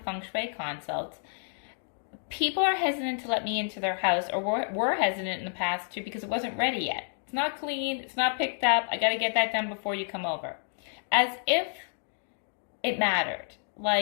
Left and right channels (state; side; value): silent; right; digital silence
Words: feng shui consults, people are hesitant to let me into their house, or were hesitant in the past too because it wasn't ready yet. It's not clean, it's not picked up, I got to get that done before you come over. As if it mattered,